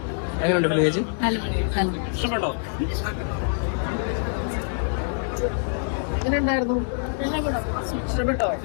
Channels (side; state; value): right; silent; digital silence